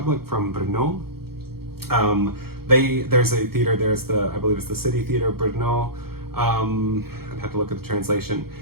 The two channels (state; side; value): late; left; 0.95 ms